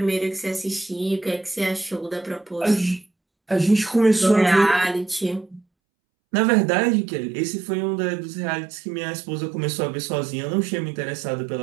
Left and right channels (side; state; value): left; drops out; at 5.7 s